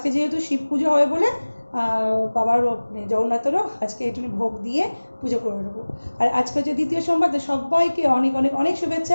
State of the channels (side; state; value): both; inverted; correlation -1.00